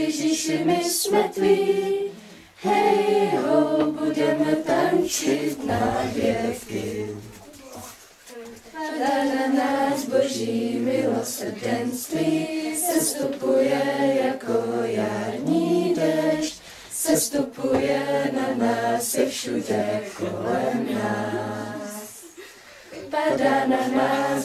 my jsme tví, hej ho, budeme tančit na věky. Padá na nás boží milosrdenství, sestupuje jako jarní déšť, sestupuje na nás i všude kolem nás. Padá na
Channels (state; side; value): identical; both; correlation 1.00